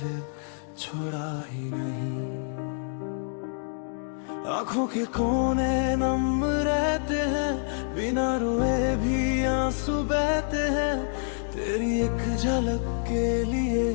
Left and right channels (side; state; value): right; silent; digital silence